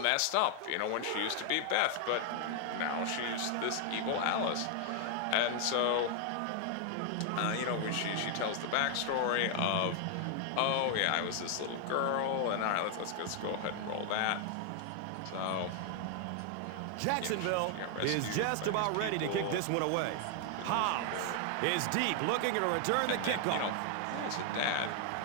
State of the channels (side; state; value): both; different; correlation 0.00